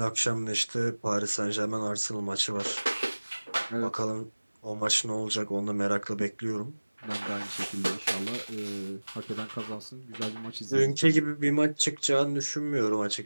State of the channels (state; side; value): inverted; both; correlation -1.00